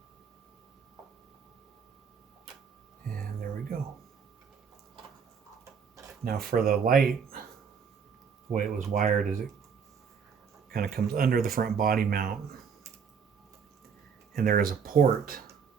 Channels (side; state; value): left; quieter; 6.5 dB